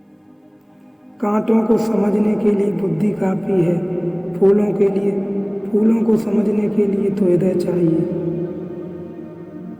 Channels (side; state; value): both; identical; correlation 1.00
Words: कांटों को समझने के लिए बुद्धि काफी है। फूलों को समझने के लिए तो हृदय चाहिए।